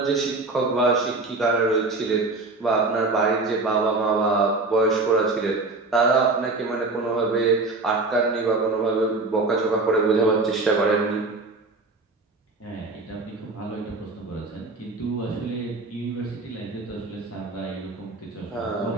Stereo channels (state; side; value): quieter; left; 3.4 dB